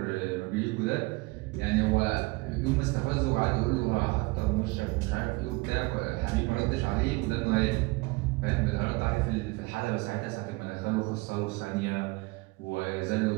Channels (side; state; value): left; quieter; 24.8 dB